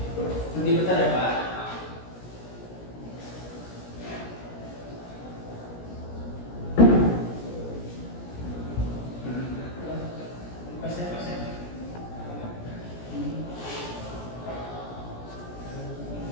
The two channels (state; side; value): late; right; 17 ms